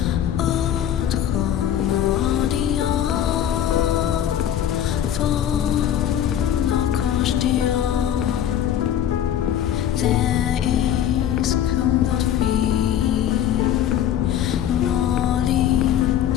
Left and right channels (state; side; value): quieter; right; 10.3 dB